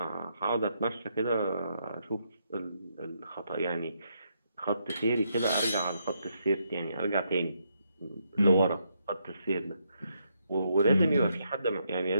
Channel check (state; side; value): inverted; both; correlation -0.78